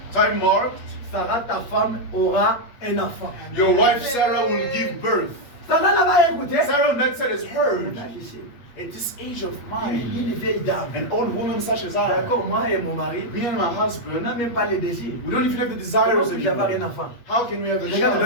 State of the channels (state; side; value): late; right; 8.4 ms